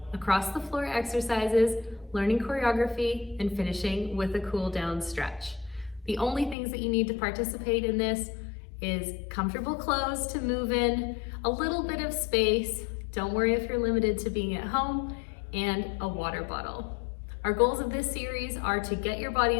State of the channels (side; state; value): right; drops out; at 6.6 s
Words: across the floor exercises, learning choreography, and finishing with a cool down stretch. The only things that you need to participate in this is comfortable clothes to move in, a little bit of space, don't worry if you're limited to being at home, and a water bottle. Our goals of this series are to get your